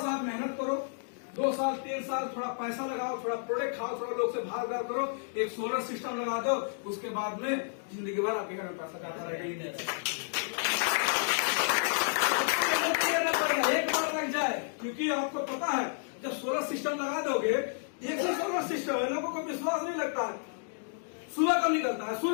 मेहनत करो, 2 साल 3 साल थोड़ा पैसा लगाओ, थोड़ा प्रोडक्ट खाओ, थोड़ा लोग से भाग करो, एक सोलर सिस्टम लगा दो, उसके बाद में जिंदगी भर आपके घर में पैसा जाता रहेगा। एक बार लग जाए, क्योंकि आपको पता है जब सोलर सिस्टम लगा दोगे, एक ही सोलर सिस्टम है, लोगों को विश्वास नहीं लगता है। सुबह कब निकलता है?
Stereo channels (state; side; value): silent; right; digital silence